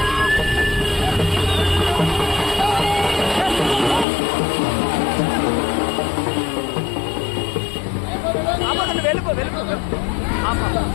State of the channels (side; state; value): right; drops out; at 4.0 s